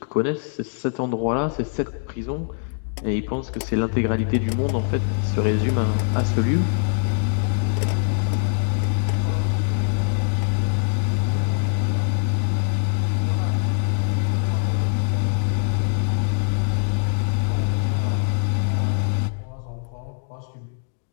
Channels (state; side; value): silent; right; digital silence